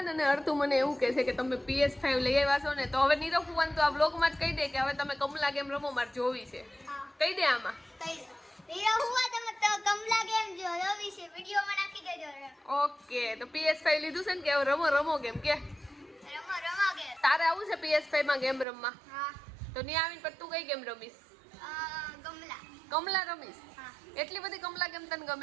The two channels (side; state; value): left; drops out; at 18.7 s